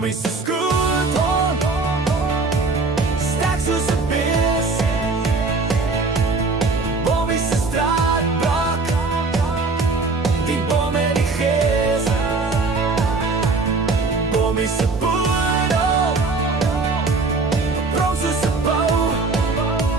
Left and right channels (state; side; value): quieter; left; 3.9 dB